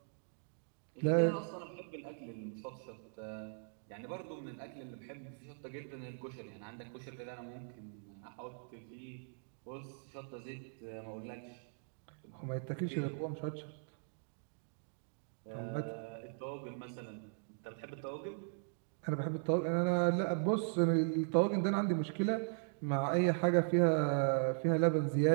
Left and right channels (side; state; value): left; silent; digital silence